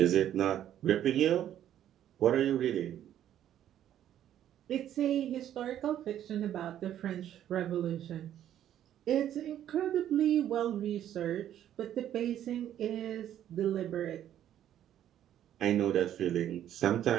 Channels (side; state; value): left; quieter; 11.1 dB